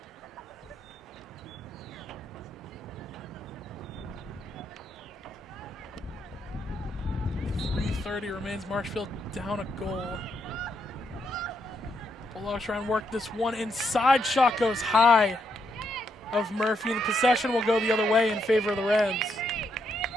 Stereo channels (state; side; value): normal; both; correlation 0.78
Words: .3:30 remains. Marshfield down a goal. Bulldogs try and work this one inside. Shot goes high of Murphy. The possession will go the other way in favor of the Rams.